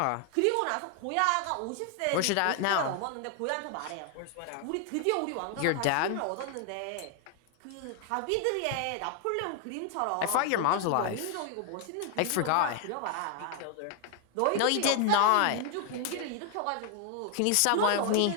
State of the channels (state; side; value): different; both; correlation 0.00